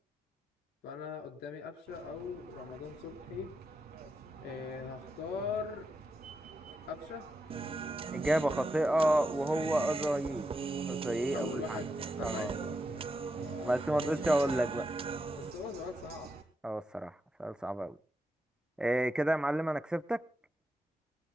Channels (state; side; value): normal; both; correlation 0.85